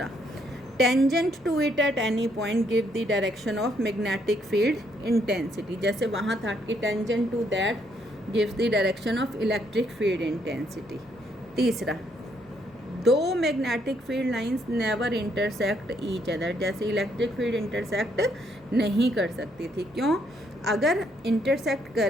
tangent to it at any point give the direction of magnetic field intensity. जैसे वहाँ था कि tangent to that gives the direction of electric field intensity. तीसरा, दो magnetic field lines never intersect each other. जैसे electric field intersect नहीं कर सकती थी, क्यों? अगर इंटरसेक्ट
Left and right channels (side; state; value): both; normal; correlation 0.71